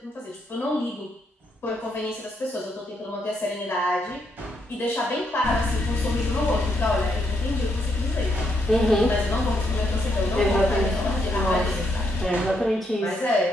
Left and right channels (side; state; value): both; normal; correlation 0.77